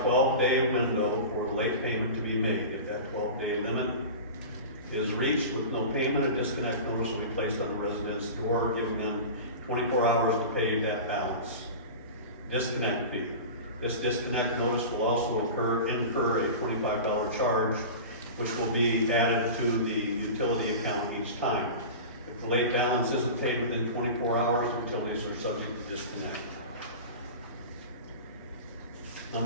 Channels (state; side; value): inverted; both; correlation -0.32